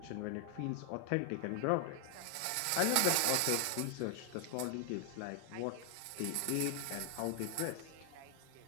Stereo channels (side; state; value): both; different; correlation 0.00